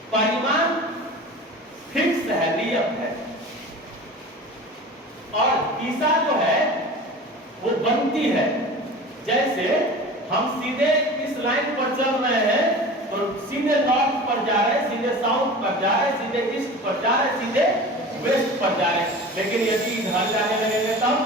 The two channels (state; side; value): normal; both; correlation 0.36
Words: परिमाण फिक्स है, नियत है, और दिशा जो है वो बनती है। जैसे हम सीधे इस लाइन पर चल रहे हैं तो सीधे नॉर्थ पर जा रहे हैं, सीधे साउथ पर जा रहे हैं, सीधे ईस्ट पर जा रहे हैं, सीधे वेस्ट पर जा रहे हैं। लेकिन यदि इधर जाने लगेंगे